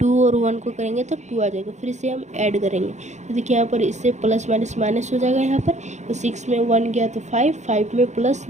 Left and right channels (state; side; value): late; left; 0.34 ms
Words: और 1 को करेंगे तो 2 आ जाएगा, फिर इसे हम ऐड करेंगे तो देखिए यहाँ पर इससे प्लस माइनस माइनस हो जाएगा यहाँ पर, तो 6 में 1 गया तो 5, 5 में प्लस